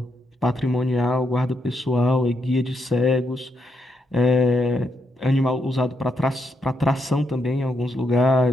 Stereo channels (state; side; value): normal; both; correlation 0.80